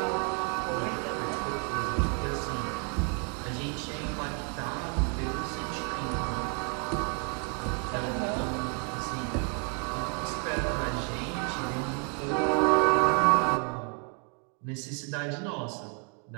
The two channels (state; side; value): quieter; left; 39.1 dB